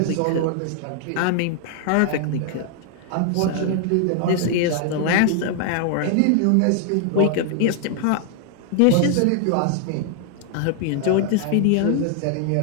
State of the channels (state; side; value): different; both; correlation 0.00